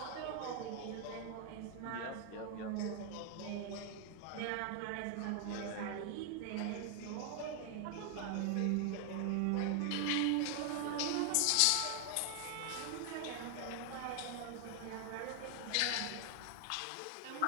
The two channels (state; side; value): different; both; correlation 0.00